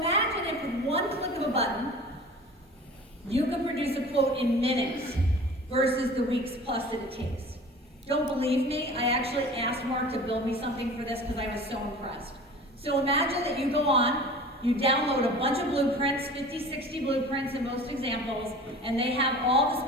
if with one click of a button, you could produce a quote in minutes versus the weeks plus that it takes. Don't believe me? I actually asked Mark to build me something for this because I was so impressed. So imagine that you go on, you download a bunch of blueprints, 50, 60 blueprints in most examples, and they have all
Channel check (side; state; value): both; normal; correlation 0.40